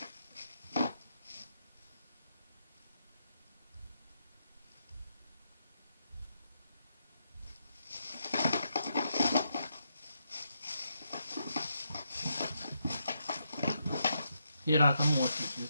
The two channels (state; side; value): inverted; both; correlation -0.80